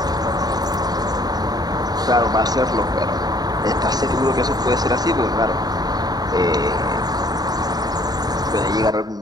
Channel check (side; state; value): left; late; 0.19 ms